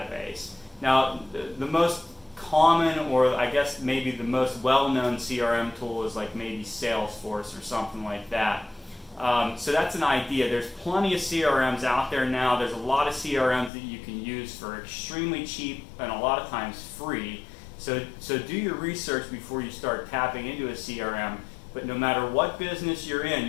Now, the most common, or I guess maybe the most well-known CRM tool is like maybe Salesforce or something like that. So that's an idea. There's plenty of CRMs out there now. There's a lot of CRMs that you can use for extremely cheap and a lot of times free. So do your research before you start tapping into a CRM. But no matter what business you're in,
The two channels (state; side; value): drops out; right; at 13.7 s